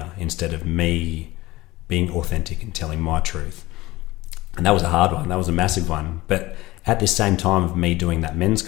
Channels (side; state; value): right; quieter; 19.0 dB